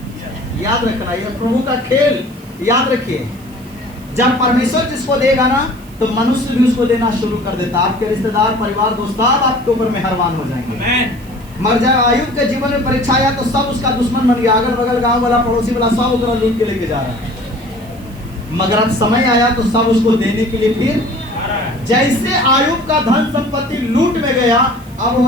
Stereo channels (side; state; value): right; noise; hiss, 25 dB below the sound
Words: याद रखना, ये प्रभु का खेल याद रखिए। जब परमेश्वर जिसको देगा ना तो मनुष्य भी उसको देना शुरू कर देता। आपके रिश्तेदार, परिवार, दोस्त सब आपके ऊपर मेहरबान हो जाएंगे। मर जाए आयुब के जीवन में परीक्षा आया तो सब उसका दुश्मन बन गया, अगल बगल गांव वाला, पड़ोसी वाला, सब उसको लूट के लेके जा रहा है। मगर अब समय आया तो सब उसको देने के लिए फिर जैसे आयुब का धन संपत्ति लूट में गया, अब